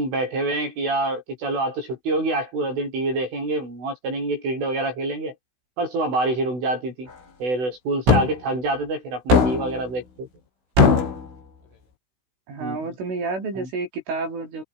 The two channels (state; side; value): late; left; 16 ms